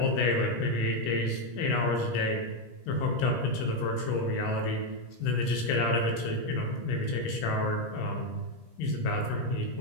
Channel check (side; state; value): right; late; 17 ms